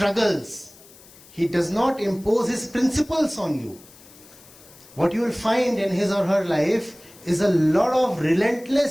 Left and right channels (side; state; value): left; noise; hiss, 23 dB below the sound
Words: He does not impose his principles on you. What you will find in his or her life is a lot of